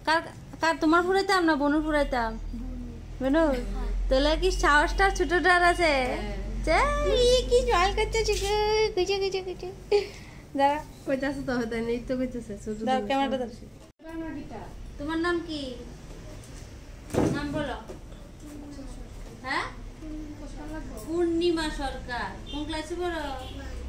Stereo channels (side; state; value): both; identical; correlation 1.00